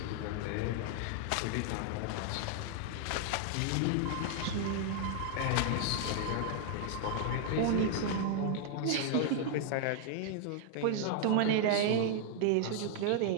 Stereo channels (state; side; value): different; both; correlation 0.00